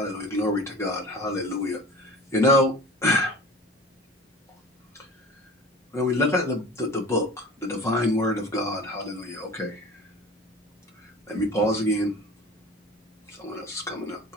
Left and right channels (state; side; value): normal; both; correlation 0.40